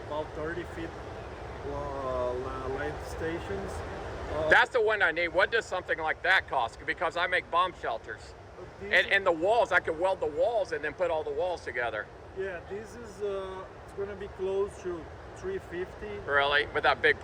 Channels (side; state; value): both; identical; correlation 1.00